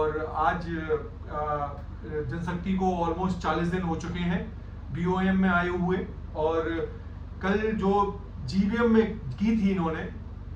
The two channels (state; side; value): identical; both; correlation 1.00